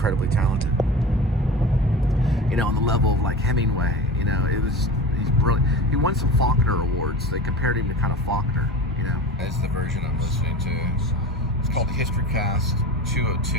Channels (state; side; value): normal; both; correlation 0.32